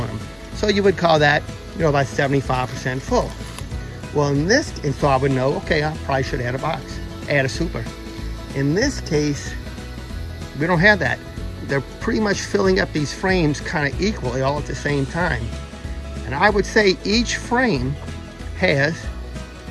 them. So you would call that, you know, about 75% full. Well, in this, and so I would know, okay, I probably should add a box, add a super. In this case, we don't have that. They're pretty much filling up these frames kind of equally all at the same time. And I would say each frame has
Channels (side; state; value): both; identical; correlation 1.00